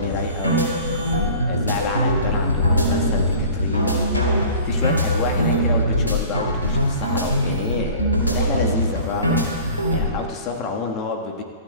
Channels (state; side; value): inverted; both; correlation -0.44